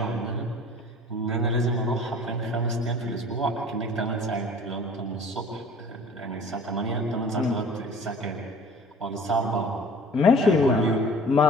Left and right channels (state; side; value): normal; both; correlation 0.46